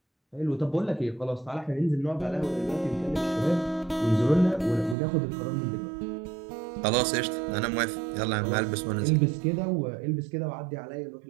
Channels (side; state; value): left; drops out; at 5.0 s